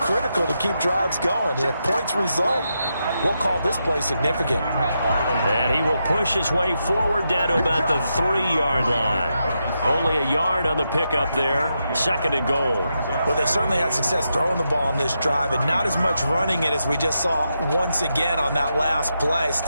to keep drives going. And if points result, we'll call this play significant. And he will push his way forward down to about the 3-yard line. Only a yard on the pickup there. 2nd and goal. Well, they certainly had success throwing the ball on this drive and not as much running it as we just saw once again on that last play.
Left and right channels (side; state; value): both; inverted; correlation -0.85